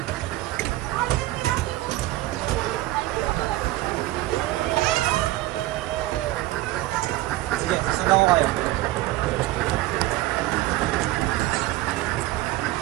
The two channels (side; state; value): left; quieter; 17.3 dB